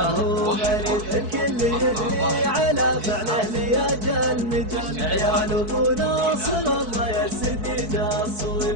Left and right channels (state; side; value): late; left; 4.6 ms